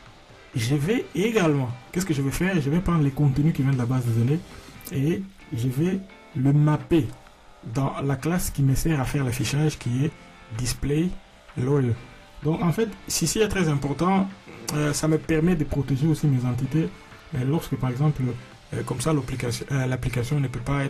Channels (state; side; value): identical; both; correlation 1.00